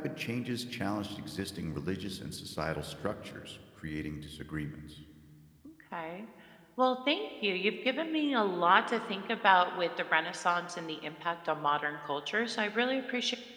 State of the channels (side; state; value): both; identical; correlation 1.00